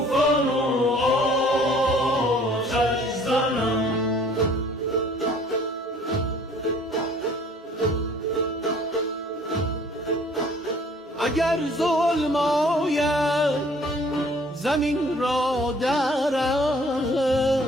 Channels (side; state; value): both; normal; correlation 0.55